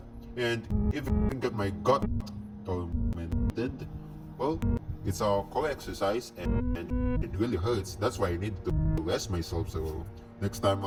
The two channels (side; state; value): both; identical; correlation 1.00